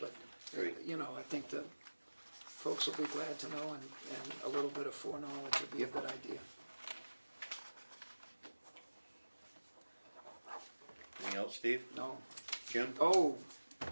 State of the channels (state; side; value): inverted; both; correlation -1.00